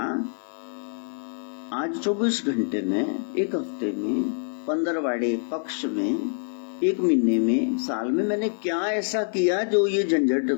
आज 24 घंटे में, एक हफ्ते में, 15वाड़े पक्ष में, 1 महीने में, साल में मैंने क्या ऐसा किया जो ये झंझट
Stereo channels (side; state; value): right; silent; 56 dB below the other